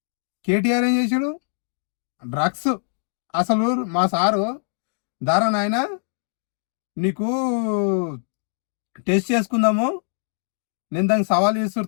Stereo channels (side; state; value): right; silent; digital silence